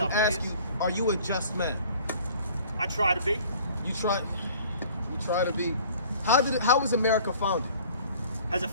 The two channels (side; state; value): both; inverted; correlation -0.51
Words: some ask ways. you, are you a just man? I try to be. You try to be. How was America founded? How